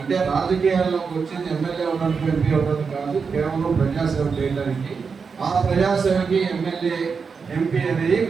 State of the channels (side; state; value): left; quieter; 5.4 dB